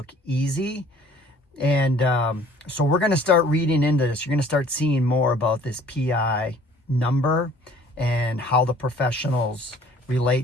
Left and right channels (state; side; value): normal; both; correlation 0.54